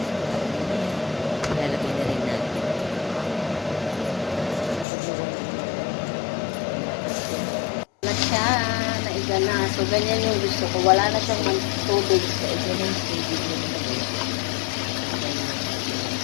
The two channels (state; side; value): drops out; right; at 4.9 s